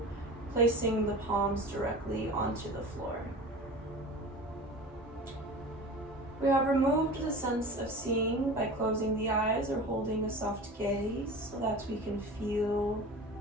placing the palms directly onto the floor. We have removed the sense of seeing by closing the eyes or holding a soft gaze so that we can feel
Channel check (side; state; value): both; normal; correlation 0.35